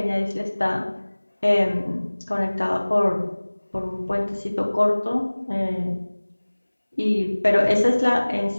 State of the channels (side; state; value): both; inverted; correlation -1.00